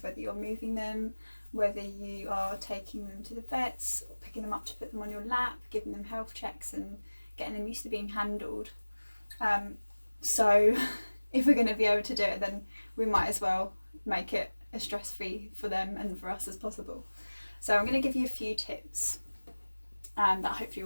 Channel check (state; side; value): inverted; both; correlation -1.00